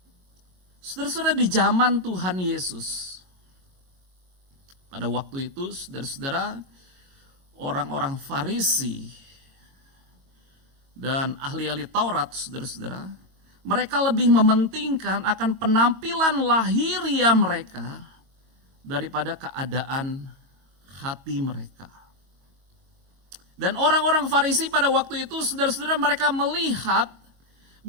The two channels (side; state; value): left; late; 22 ms